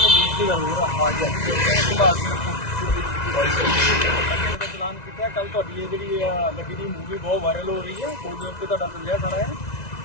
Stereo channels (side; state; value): right; late; 1.9 ms